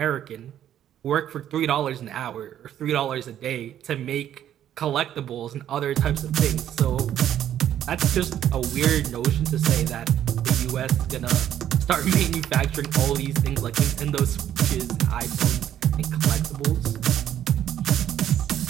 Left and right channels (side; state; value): left; quieter; 10.9 dB